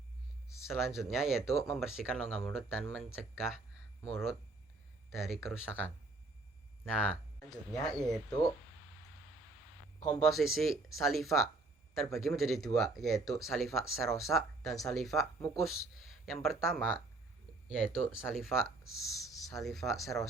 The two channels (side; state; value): left; quieter; 3.1 dB